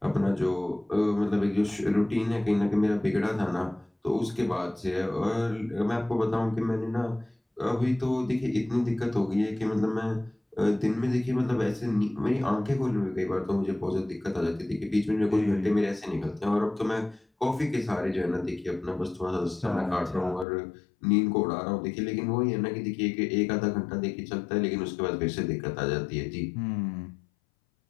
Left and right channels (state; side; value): drops out; right; at 20.5 s